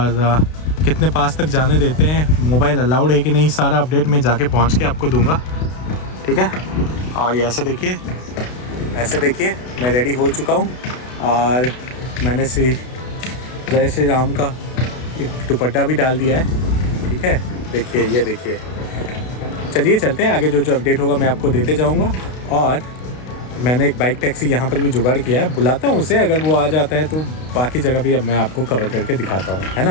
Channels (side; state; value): right; late; 32 ms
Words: कितने पास तक जाने देते हैं, मोबाइल अलाउड है कि नहीं, सारा अपडेट मैं जाके पहुँच के आपको दूंगा। ठीक है। और ये ऐसे देखिए, मैं रेडी हो चुका हूँ और मैंने जय श्री राम का एक दुपट्टा भी डाल दिया है। ठीक है, देखिए, ये देखिए। चलिए चलते हैं आगे, जो अपडेट होगा मैं आपको देते जाऊँगा। और मैंने एक बाइक टैक्सी यहाँ पर भी जुगाड़ किया है, बुलाता हूँ उसे, अगर वो आ जाता है तो बाकी जगह भी अब मैं आपको कवर करके दिखाता हूँ, है